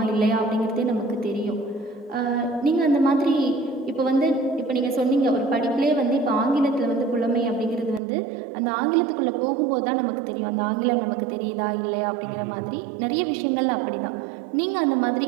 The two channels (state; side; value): drops out; left; at 8.0 s